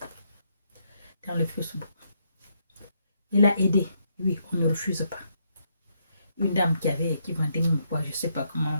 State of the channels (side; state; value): both; inverted; correlation -0.76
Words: Dans le Facebook. Il a aidé. Oui, on ne refuse pas. Une dame qui vendait mon poids, je ne sais pas